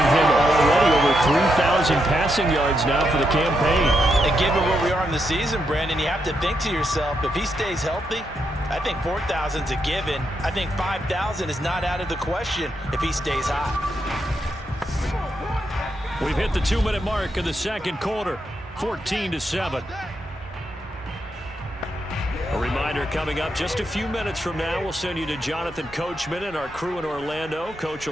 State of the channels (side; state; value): both; normal; correlation 0.81